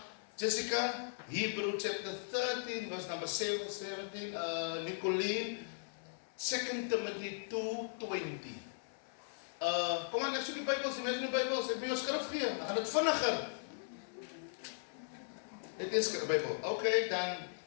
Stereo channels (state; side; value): silent; right; 52 dB below the other